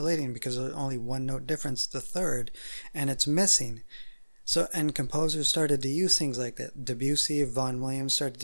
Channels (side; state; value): both; inverted; correlation -1.00